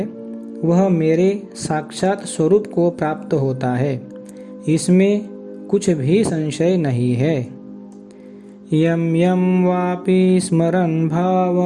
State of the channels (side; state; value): both; identical; correlation 1.00